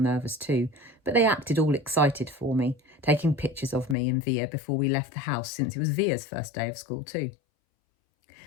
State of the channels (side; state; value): right; drops out; at 4.0 s